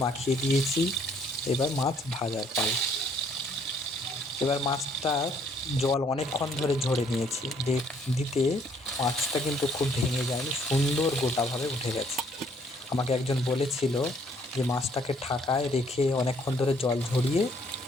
মাখিয়ে দিয়েছি, এবার মাছ ভাজার পাল। এবার মাছটার জল অনেকক্ষণ ধরে ঝরে নিয়েছি, দিতে মাছটা কিন্তু খুব ভেঙে যায়নি, সুন্দর গোটাভাবে উঠে গেছে। আমাকে একজন বলেছিল যে মাছটাকে ঢাকায় রেখে অনেকক্ষণ ধরে জল ঝরিয়ে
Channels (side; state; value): both; normal; correlation 0.64